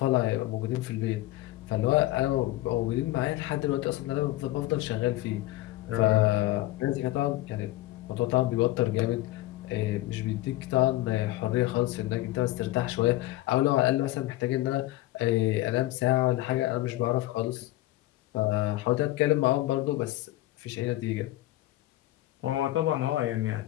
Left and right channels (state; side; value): quieter; right; 16.7 dB